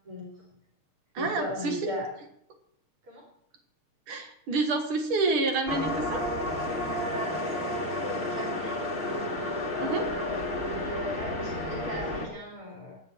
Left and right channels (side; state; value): left; late; 6.5 ms